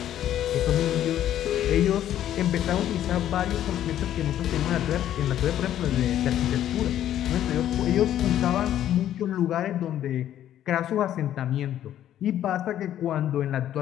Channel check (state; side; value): quieter; right; 11.5 dB